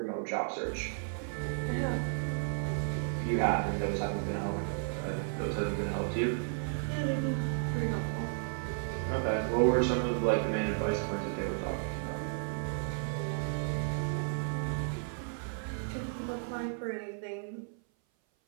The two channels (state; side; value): silent; left; 55 dB below the other